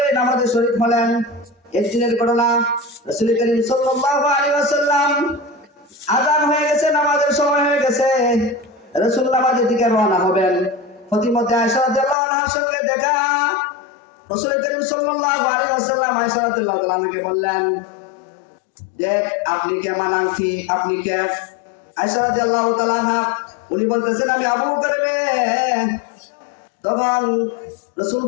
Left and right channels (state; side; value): drops out; right; at 12.2 s